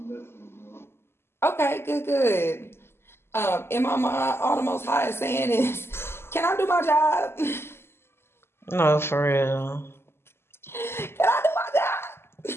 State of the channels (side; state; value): right; late; 0.12 ms